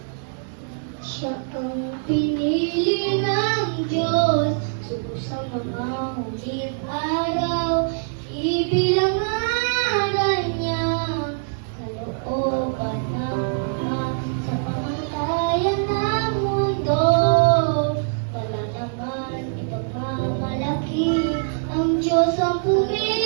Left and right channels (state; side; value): silent; left; digital silence